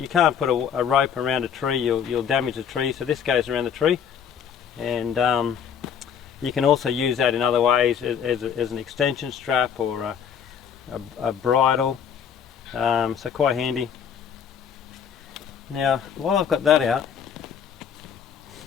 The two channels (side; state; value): right; quieter; 7.8 dB